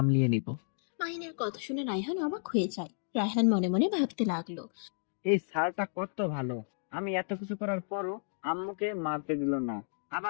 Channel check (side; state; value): right; silent; digital silence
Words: নিব। মাহিনের কথা শুনে রায়হান অবাক হয়ে যায়। রায়হান মনে মনে ভাবতে লাগলো, এই স্যারটা কত ভালো, আমি এত কিছু করার পরও আম্মুকে মারতে দিল না।